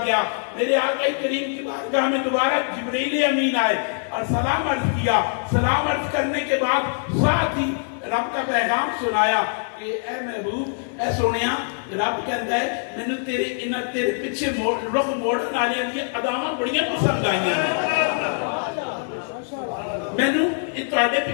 گیا، میرے آقا کریم کی بارگاہ میں دوبارہ جبریل امین آئے اور سلام عرض کیا۔ سلام عرض کرنے کے بعد ساتھ ہی رب کا پیغام سنایا کہ اے محبوب، اے سونیا، رب کہتا ہے میں نے تیرے پیچھے رخ موڑن والے دی اداواں بڑیاں پسند آئیاں ہیں، میں نے تواڈے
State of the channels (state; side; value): silent; right; 63 dB below the other